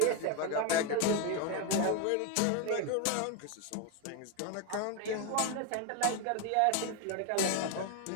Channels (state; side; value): different; both; correlation 0.02